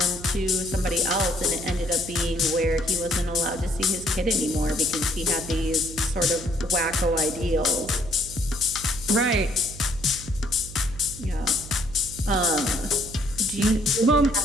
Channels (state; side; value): noise; right; hum, 14 dB below the sound